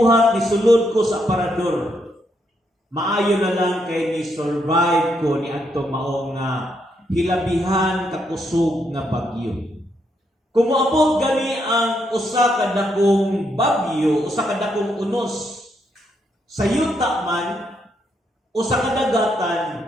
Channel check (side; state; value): both; normal; correlation 0.77